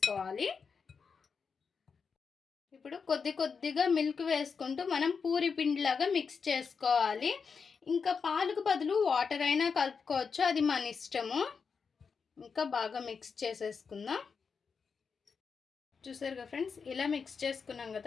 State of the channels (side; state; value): right; quieter; 5.6 dB